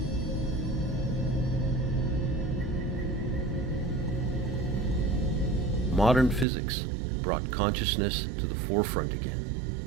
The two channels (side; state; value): left; drops out; at 6.5 s